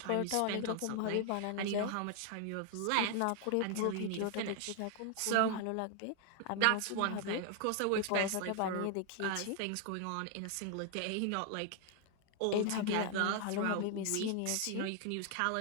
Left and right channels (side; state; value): both; different; correlation 0.00